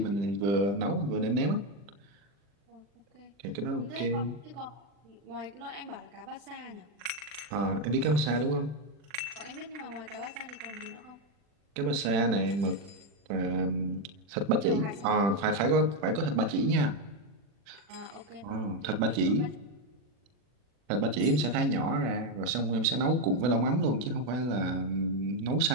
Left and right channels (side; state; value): left; late; 40 ms